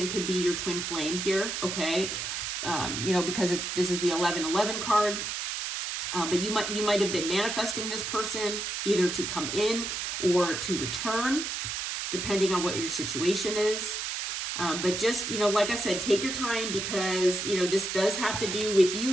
could be your twin flame here, okay? Because this is the 1111 card. But you might have been manifesting this person either to come in or to return, depending on what your situation is. But just, like I said, take your time because, this does have to do with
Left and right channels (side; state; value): right; noise; hiss, 3 dB below the sound